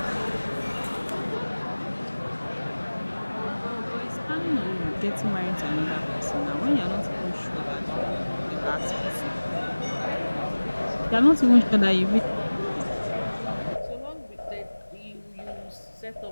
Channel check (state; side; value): inverted; both; correlation -1.00